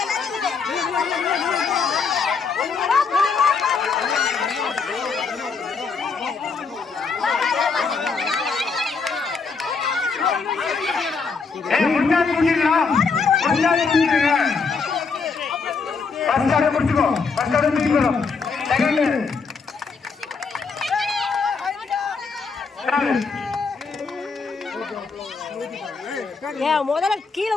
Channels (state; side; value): quieter; right; 4.9 dB